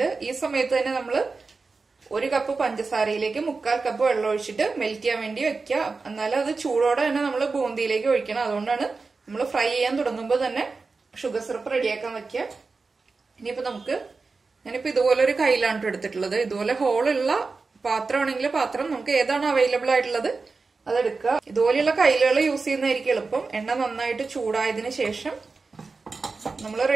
ഈ സമയത്ത് തന്നെ നമ്മൾ 1 കപ്പ് പഞ്ചസാരയിലേക്ക് 3/4 കപ്പ് വെള്ളം ഒഴിച്ചിട്ട് മെൽറ്റ് ചെയ്യാൻ വേണ്ടി വെക്കുക. എന്നാലും അത് ചൂടോടെ തന്നെ നമ്മൾ ബൂന്തിയിലേക്ക് ഒഴിക്കണം. അതുകൊണ്ടാണ് നമ്മൾ ഫ്രൈ ചെയ്യാൻ തുടങ്ങുമ്പോൾ തന്നെ ഷുഗർ സിറപ്പ് റെഡിയാക്കാൻ വെക്കുക. ഇനിയിപ്പോ ഞാനിപ്പോ ഇതുപോലെ ഒരു കയ്യിലാണ് എടുത്തിട്ടുള്ളത്. ഇതുപോലെ ഹോളുള്ള പാത്രമാണെങ്കിൽ പാത്രം നമുക്ക് ഏതാണ് അവൈലബിൾ ആയിട്ടുള്ളത് അതെടുക്കുക. ഇതുപോലെയുള്ള കയ്യിലുകൾ യൂസ് ചെയ്യുന്നതായിരിക്കും എളുപ്പം. എണ്ണ നന്നായിട്ട് ചൂടായതിനു ശേഷം നമ്മൾ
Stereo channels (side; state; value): left; quieter; 4.2 dB